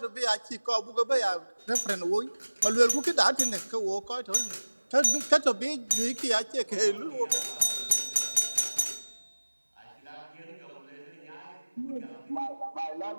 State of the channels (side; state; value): both; inverted; correlation -1.00